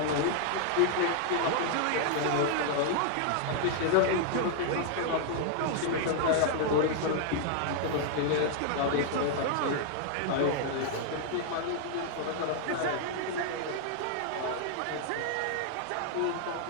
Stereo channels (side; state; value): both; different; correlation 0.00